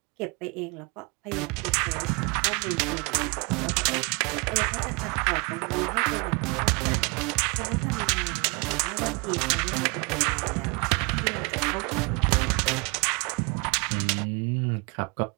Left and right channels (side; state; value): left; quieter; 30.2 dB